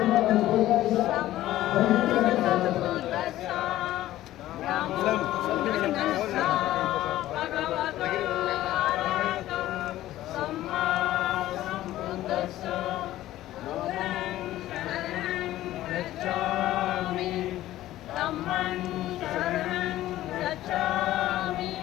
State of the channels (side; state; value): right; quieter; 14.6 dB